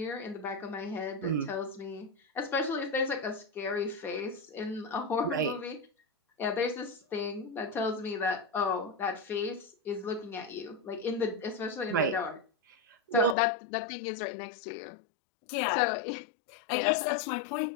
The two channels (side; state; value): right; drops out; at 13.4 s